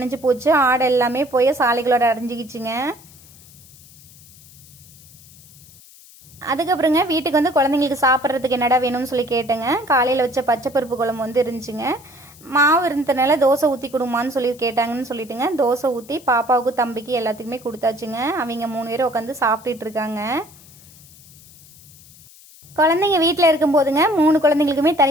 போச்சு. ஆடு எல்லாமே போய் சாலைகளோட அடைஞ்சிக்கிச்சுங்க. அதுக்கப்புறங்க வீட்டுக்கு வந்து குழந்தைங்களுக்கு சாப்பிட்றதுக்கு என்னடா வேணும்னு சொல்லி கேட்டேங்க. காலையில் வச்ச பச்சை பருப்பு குழம்பு வந்து இருந்துச்சுங்க. மாவு இருந்ததுனால தோசை ஊற்றி கொடுமான்னு சொல்லி கேட்டாங்கன்னு சொல்லிட்டுங்க தோசை ஊற்றி பாப்பாவுக்கு தம்பிக்கு எல்லாத்துக்குமே கொடுத்தாச்சுங்க. அவங்க 3 பேரும் உட்காந்து சாப்பிட்டுட்டு இருக்காங்க. குழந்தைங்க வீட்டில் இருக்கும்போதுங்க 3 குழந்தைங்களுக்குமே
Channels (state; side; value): noise; left; hiss, 23 dB below the sound